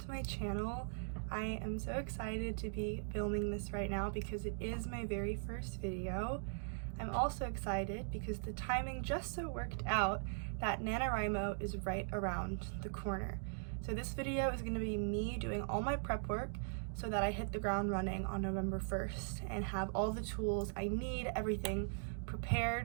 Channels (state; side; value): silent; left; digital silence